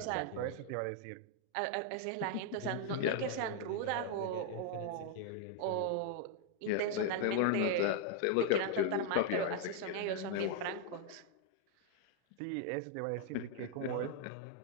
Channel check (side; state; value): both; different; correlation 0.00